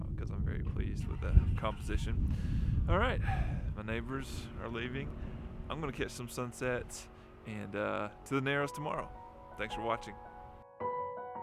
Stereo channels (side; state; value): both; identical; correlation 1.00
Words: because I'm very pleased with the composition. All right, my neighbors are leaving. I'm going to catch some sunsets and to the Narrows tomorrow. Thanks for watching.